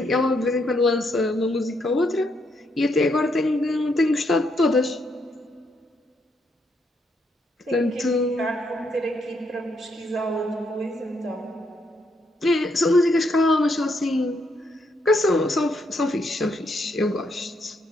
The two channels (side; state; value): both; normal; correlation 0.76